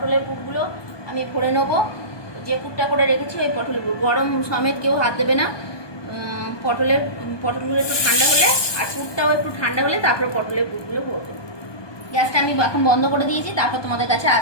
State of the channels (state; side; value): late; right; 1.2 ms